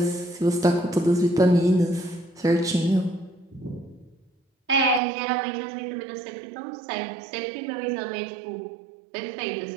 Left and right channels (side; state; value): left; drops out; at 5.0 s